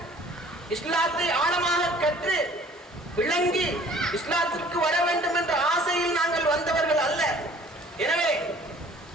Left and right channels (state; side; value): normal; both; correlation 0.52